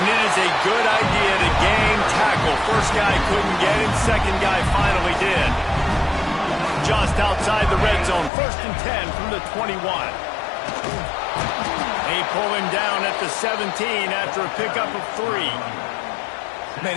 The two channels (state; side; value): drops out; right; at 8.3 s